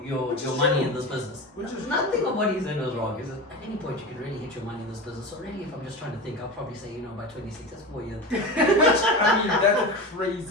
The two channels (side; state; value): both; normal; correlation 0.26